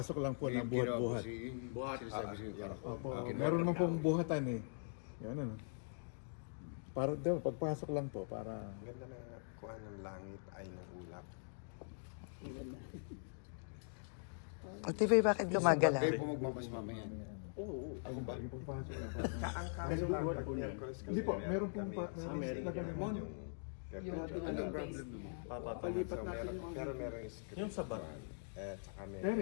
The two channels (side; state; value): right; silent; digital silence